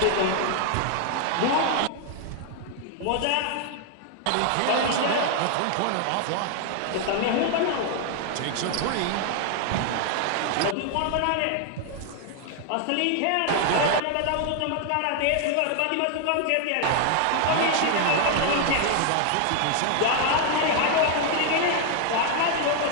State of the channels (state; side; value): different; both; correlation 0.00